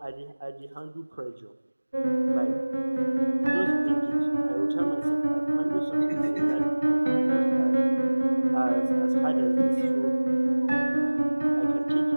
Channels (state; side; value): inverted; both; correlation -1.00